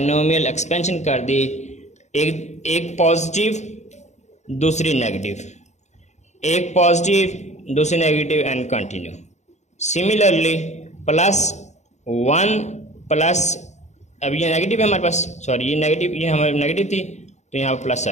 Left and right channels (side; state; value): right; late; 0.33 ms